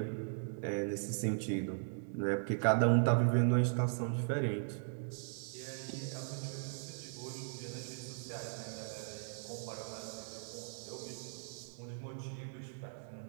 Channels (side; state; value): left; silent; digital silence